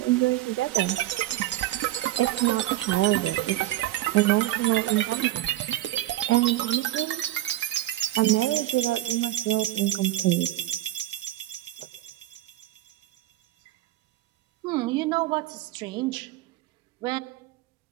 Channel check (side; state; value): left; quieter; 15.1 dB